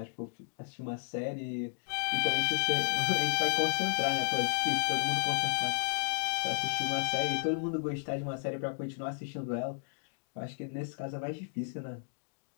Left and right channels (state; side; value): silent; right; digital silence